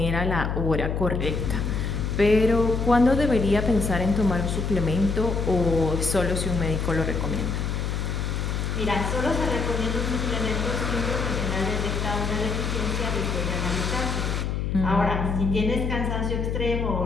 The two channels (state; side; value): noise; left; hum, 1 dB below the sound